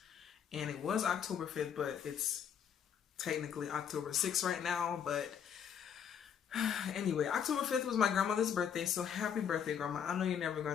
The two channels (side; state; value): right; quieter; 8.1 dB